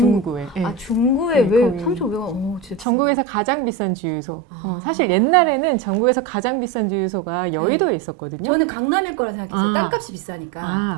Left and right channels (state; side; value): drops out; left; at 2.9 s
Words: 네. 아 중구에 네, 왜 거기. 3,500원? 진짜 전국에서 가장 비싼 주유소. 아. 사실 옛날에는 전국에서 가장 비싼 주유소가 여의도에 있었거든요. 저는 강남일 거라 생각했어요. 아. 땅값이 비싸니까.